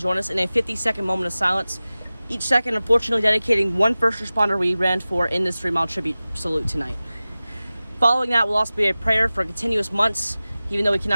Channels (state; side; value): inverted; both; correlation -0.97